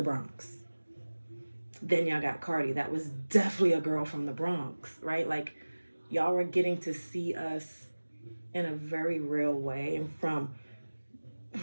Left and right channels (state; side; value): inverted; both; correlation -1.00